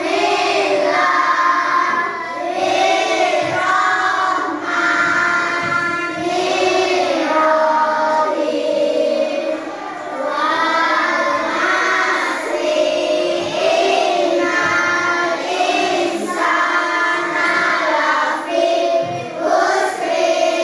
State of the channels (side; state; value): both; identical; correlation 1.00